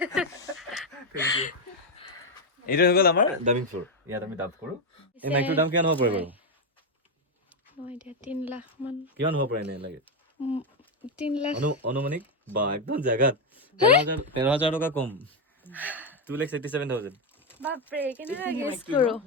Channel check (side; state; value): both; normal; correlation 0.06